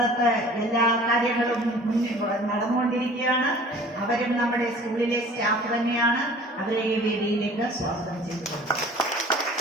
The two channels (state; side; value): normal; both; correlation 0.47